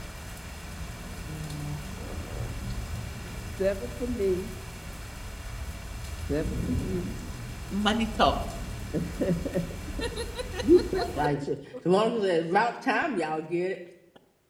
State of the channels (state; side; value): identical; both; correlation 1.00